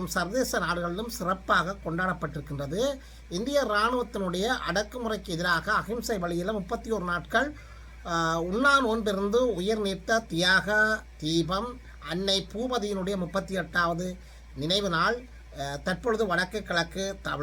சர்வதேச நாடுகளிலும் சிறப்பாக கொண்டாடப்பட்டிருக்கின்றது. இந்திய இராணுவத்தினுடைய அடக்குமுறைக்கு எதிராக அகிம்சை வழியில் 31 நாட்கள் உண்ணா நோன்பிருந்து உயிர் நீத்த தியாக தீபம் அன்னை பூபதியினுடைய 38வது நினைவு நாள் தற்பொழுது வடக்கு கிழக்கு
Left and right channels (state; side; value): identical; both; correlation 1.00